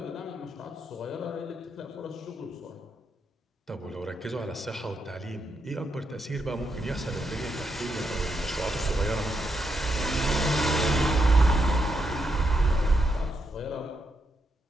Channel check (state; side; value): normal; both; correlation 0.81